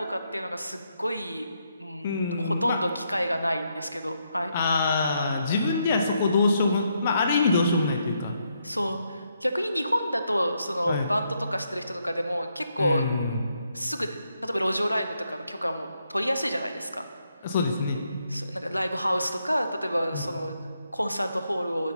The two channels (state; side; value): inverted; both; correlation -0.78